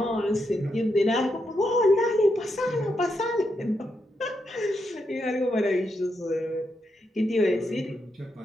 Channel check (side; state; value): both; normal; correlation 0.82